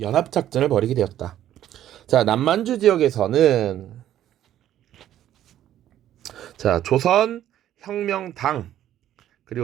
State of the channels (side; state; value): left; quieter; 11.9 dB